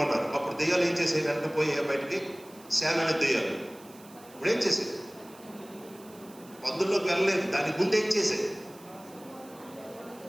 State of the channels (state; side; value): noise; right; hiss, 23 dB below the sound